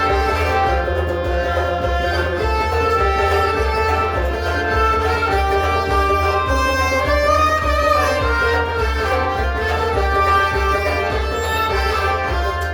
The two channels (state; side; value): identical; both; correlation 1.00